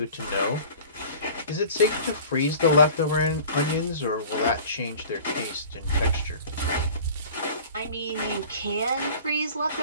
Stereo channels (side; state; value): both; inverted; correlation -0.42